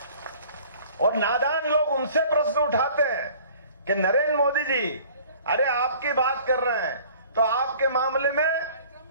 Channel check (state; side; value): inverted; both; correlation -0.50